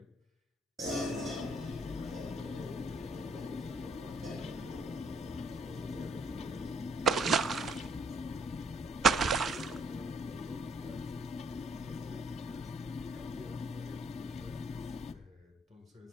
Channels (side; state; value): both; normal; correlation 0.66